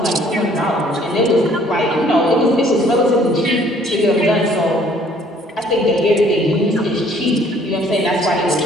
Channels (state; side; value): normal; both; correlation 0.59